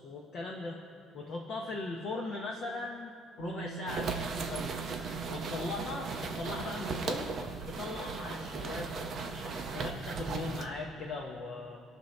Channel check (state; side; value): normal; both; correlation 0.60